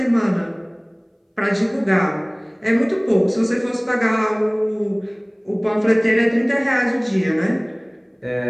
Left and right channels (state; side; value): identical; both; correlation 1.00